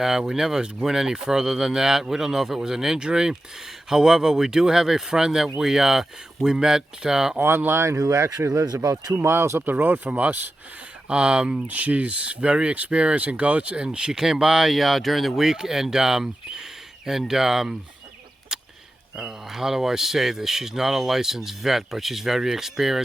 We never went any further than that. We don't know if it was an injury. However, we do have a friend that we met online who actually lives about 2 miles up the road from us. She's very experienced in goats, and she came by during the week and how do I say this? She's not a licensed vet, but she's very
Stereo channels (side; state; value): both; normal; correlation 0.92